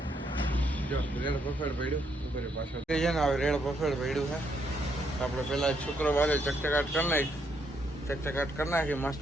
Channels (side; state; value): both; normal; correlation 0.75